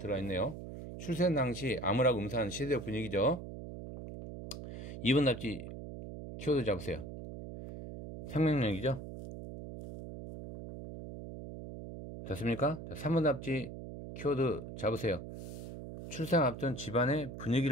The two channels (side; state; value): right; noise; hum, 10 dB below the sound